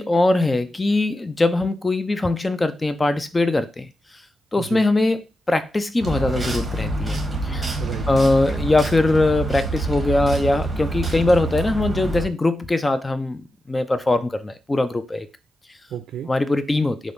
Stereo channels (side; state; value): both; normal; correlation 0.90